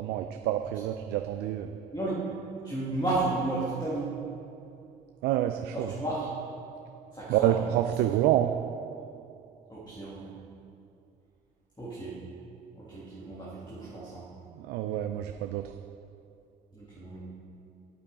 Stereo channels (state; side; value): quieter; left; 7.5 dB